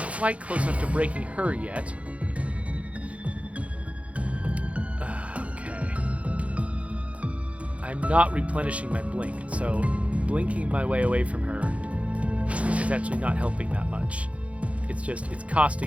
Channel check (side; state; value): left; late; 0.064 ms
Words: close enough to breaking her yet. Okay. I'm not replenishing my blink, so blinking my way away from her is actually not helping that much. It's just, it's